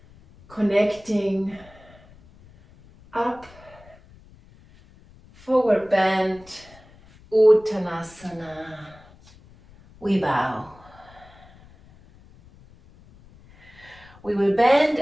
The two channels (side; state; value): left; noise; rumble, 25 dB below the sound